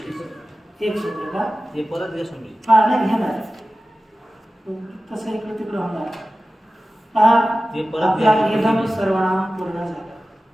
एक शब्द का? हे परत नाही घेणार, तसं इकडे तिकडे होणार. आपला इदम सर्वनाम पूर्ण झाला.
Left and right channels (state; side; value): normal; both; correlation 0.95